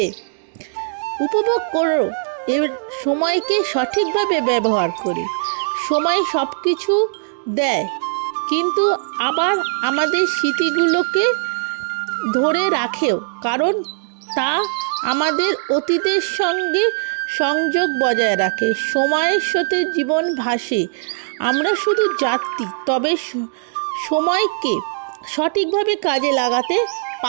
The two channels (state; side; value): silent; left; digital silence